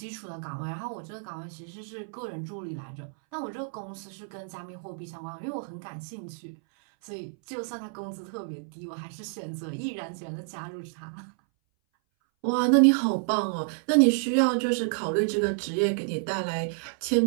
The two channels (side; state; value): left; silent; 58 dB below the other